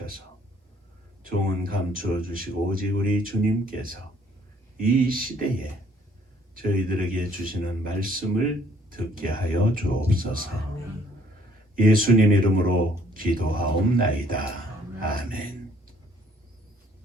종은 감추어 주시고 오직 우리 주님께서 이 시대에 저희들에게 주시는 말씀을 듣게 하여 주옵소서. 예수님 이름으로 기도하옵나이다. 아멘.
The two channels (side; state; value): both; normal; correlation 0.62